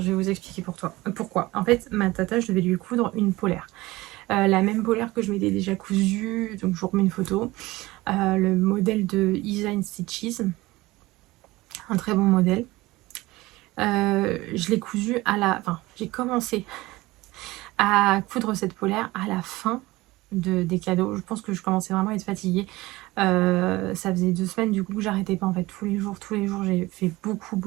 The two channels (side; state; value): left; quieter; 19.8 dB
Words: vais vous expliquer pourquoi. En fait, ma tata, je devais lui coudre une polaire. La même polaire que je m'étais déjà cousue, donc je vous remets une photo. Le modèle de Design Stitches. Un très bon modèle. Je l'ai cousue Enfin, j'ai commencé à coudre cette polaire à la fin des cadeaux. Je pense que je commençais vraiment à être fatiguée. Ça faisait 2 semaines du coup que j'arrêtais pas en fait. Tous les jours j'ai fait